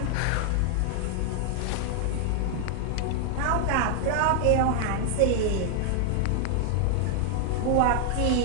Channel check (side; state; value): both; different; correlation 0.00